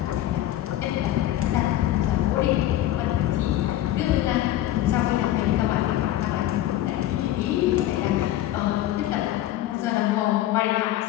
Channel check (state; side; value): quieter; right; 13.6 dB